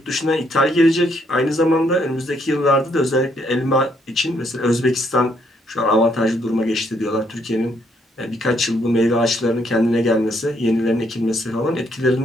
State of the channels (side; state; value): both; normal; correlation 0.72